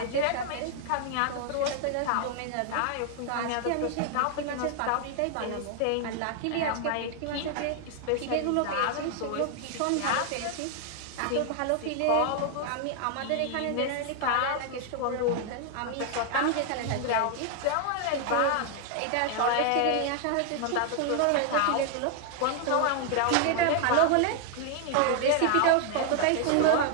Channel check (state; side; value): different; both; correlation 0.00